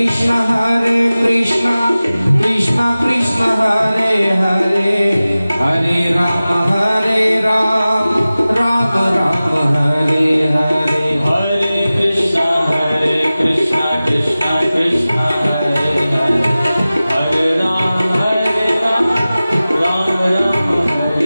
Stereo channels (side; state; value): both; inverted; correlation -0.96